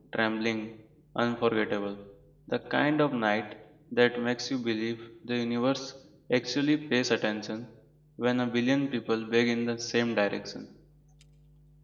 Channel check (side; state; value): both; identical; correlation 1.00